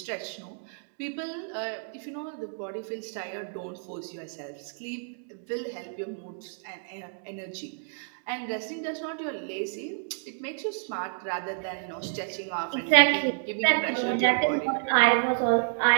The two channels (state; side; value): silent; left; digital silence